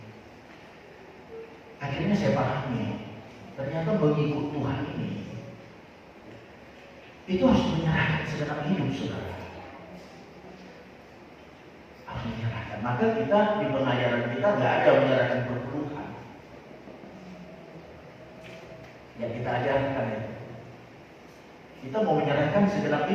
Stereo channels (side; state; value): both; identical; correlation 1.00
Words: Akhirnya saya pahami, ternyata mengikut Tuhan ini, itu harus menyerahkan segenap hidup saudara. Harus menyerahkan. Maka kita di pengajaran kita nggak ada menyerahkan perpuluhan. Yang kita ajarkan ya. Kita mau menyerahkan segenap